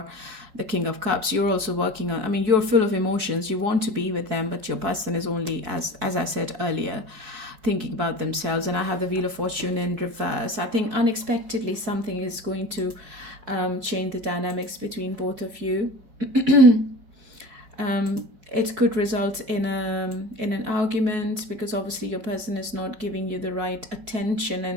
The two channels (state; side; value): late; left; 4.6 ms